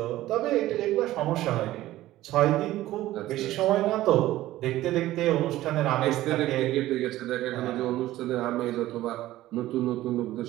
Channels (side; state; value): left; quieter; 15.5 dB